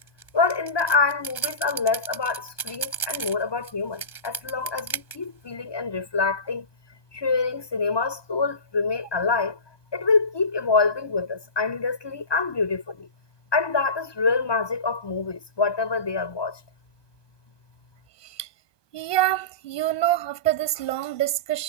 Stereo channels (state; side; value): late; right; 1.2 ms